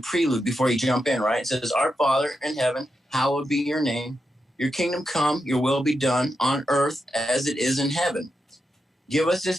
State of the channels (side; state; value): both; normal; correlation 0.86